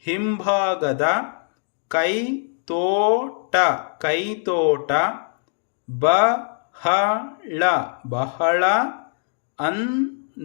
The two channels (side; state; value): right; silent; digital silence